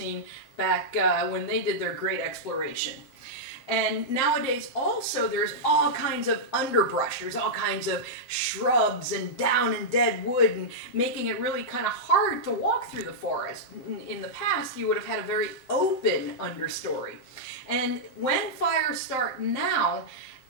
back when they did their great exploration. And nowadays also there's all kinds of underbrush, there's all kinds of shrubs and down and dead wood, and making it really kind of hard to walk through the forest. In the past you would have had a very open understory. And when fires start now,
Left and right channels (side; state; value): right; late; 7.8 ms